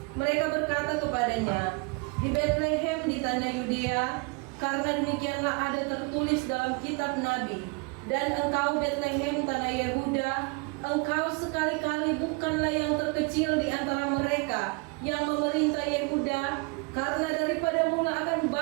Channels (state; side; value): quieter; left; 29.7 dB